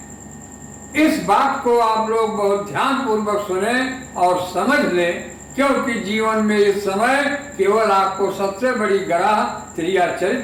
इस बात को आप लोग बहुत ध्यान पूर्वक सुने और समझ लें, क्योंकि जीवन में इस समय केवल आपको सबसे बड़ी गराह त्रिया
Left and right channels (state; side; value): identical; both; correlation 1.00